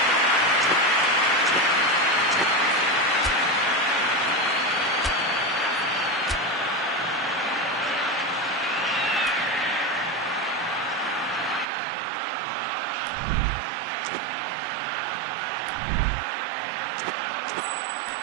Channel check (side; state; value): left; drops out; at 11.7 s